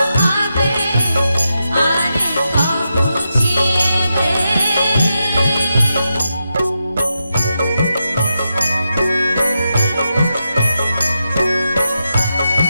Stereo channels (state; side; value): inverted; both; correlation -0.87